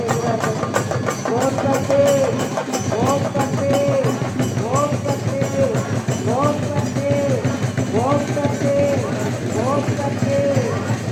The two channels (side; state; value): both; identical; correlation 1.00